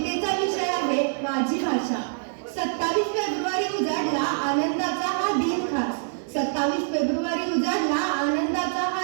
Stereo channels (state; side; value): silent; left; digital silence